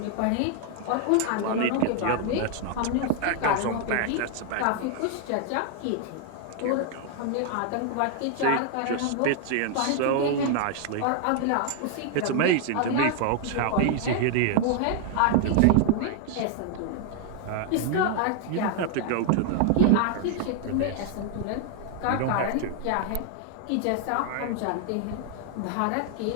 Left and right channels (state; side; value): different; both; correlation 0.00